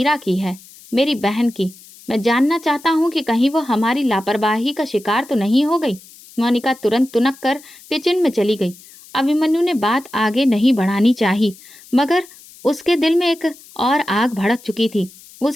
की है, मेरी बहन की। मैं जानना चाहता हूँ कि कहीं वो हमारी लापरवाही का शिकार तो नहीं हो गई। मोनिका तुरंत तुनक कर किचन में चली गई। अभिमन्यु ने बात आगे नहीं बढ़ानी चाहिए, मगर उसके दिल में एक और आग भड़क चुकी थी।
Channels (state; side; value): noise; left; hiss, 22 dB below the sound